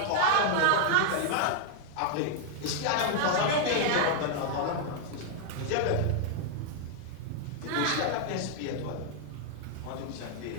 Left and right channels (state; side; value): different; both; correlation 0.00